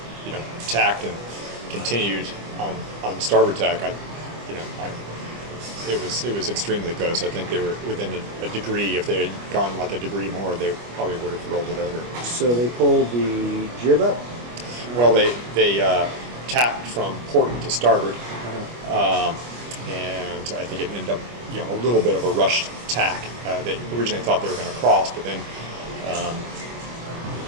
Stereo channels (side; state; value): left; late; 25 ms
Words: tacked and continued on starboard tack, it was extremely close. I think they were within a degree. If they had gone like a degree more, they probably would have rolled it over. So they pulled the jib up? Well, they tacked from port to starboard, and I think it ended up a little bit of a rushed tack. They originally thought they were going to cross, but then